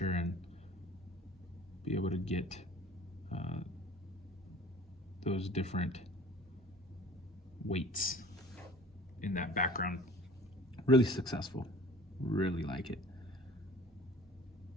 and be able to get those different weights in that background. Really successful, really like it.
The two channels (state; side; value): normal; both; correlation 0.46